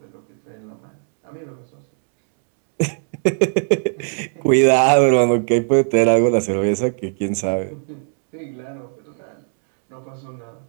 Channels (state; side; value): silent; left; 63 dB below the other